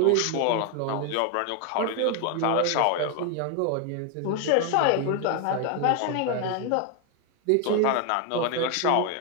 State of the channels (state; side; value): different; both; correlation 0.01